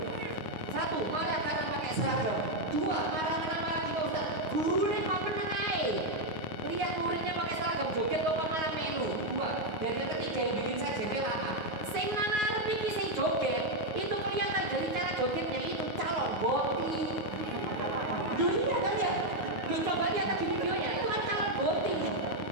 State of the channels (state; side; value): late; left; 9.5 ms